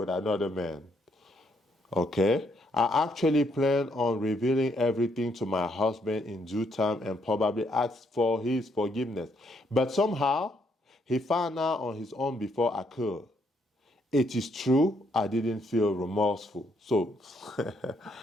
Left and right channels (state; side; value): normal; both; correlation 0.73